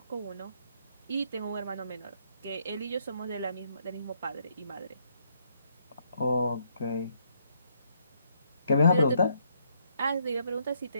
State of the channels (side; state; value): both; inverted; correlation -0.71